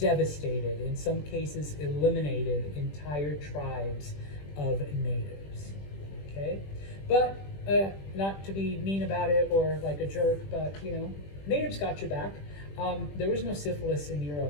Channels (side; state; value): right; late; 20 ms